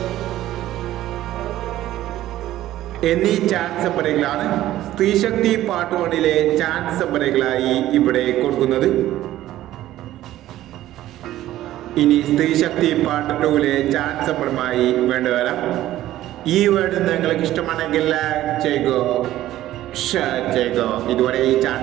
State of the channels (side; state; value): left; quieter; 14.2 dB